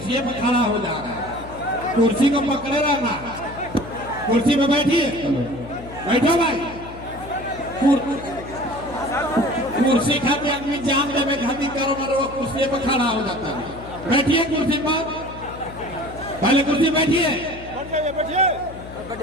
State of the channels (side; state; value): left; noise; hum, 15 dB below the sound